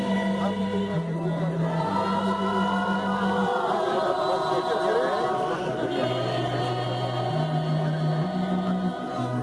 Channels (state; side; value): noise; left; hum, 28 dB below the sound